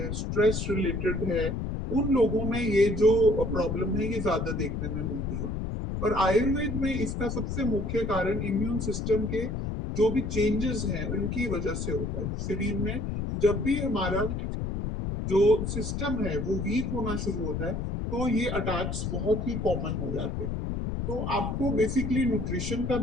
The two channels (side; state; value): left; noise; rumble, 3 dB below the sound